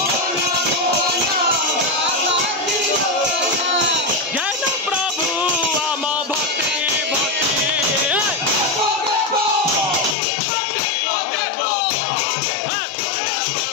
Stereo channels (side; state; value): right; drops out; at 10.2 s